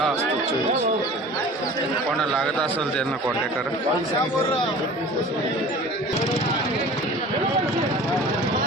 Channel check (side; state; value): both; normal; correlation 0.42